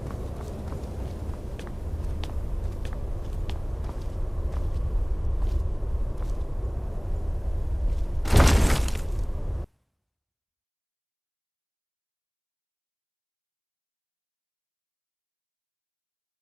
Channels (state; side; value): identical; both; correlation 1.00